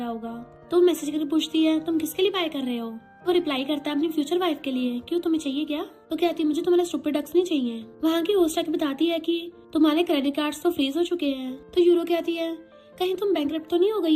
होगा। तो मैसेज करके पूछती है, तुम किसके लिए बाय कर रहे हो? वो रिप्लाई करता है, अपनी फ्यूचर वाइफ के लिए। क्यों, तुम्हें चाहिए क्या? तो कहती है, मुझे तुम्हारे स्टूपिड डक्स नहीं चाहिए। वहाँ की होस्ट आके बताती है कि तुम्हारे क्रेडिट कार्ड्स तो फ्रीज हो चुके हैं। तो यूरो कहती है, कहीं तुम बैंकरप्ट तो नहीं हो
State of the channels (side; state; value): both; identical; correlation 1.00